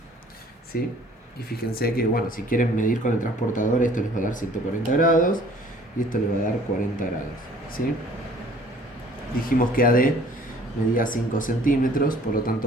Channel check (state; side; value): normal; both; correlation 0.54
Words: ¿sí? Y fíjense que, bueno, si quieren medir con el transportador, esto les va a dar 140 grados y esto les va a dar 40 grados, ¿sí? Dijimos que AD medía 5 centímetros, por lo